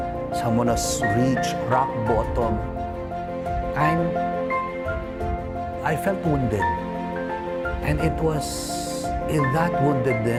someone who's reached rock bottom, I felt wounded. And it was in that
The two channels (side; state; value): both; identical; correlation 1.00